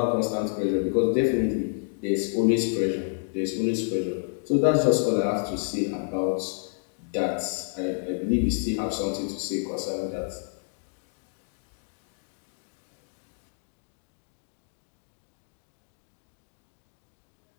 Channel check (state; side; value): silent; right; digital silence